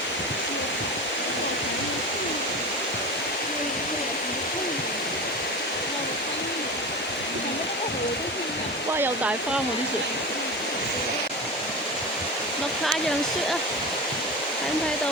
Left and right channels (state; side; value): normal; both; correlation 0.27